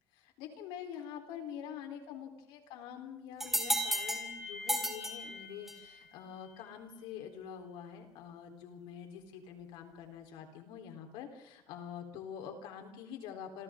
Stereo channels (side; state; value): both; normal; correlation 0.53